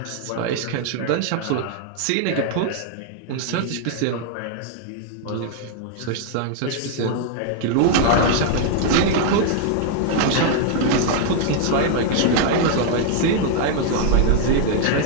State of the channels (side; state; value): both; different; correlation 0.00